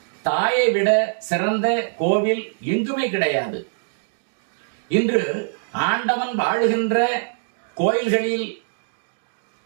தாயை விட சிறந்த கோவில் எங்குமே கிடையாது. இன்று ஆண்டவன் வாழுகின்ற கோயில்களில்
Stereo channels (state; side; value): silent; left; digital silence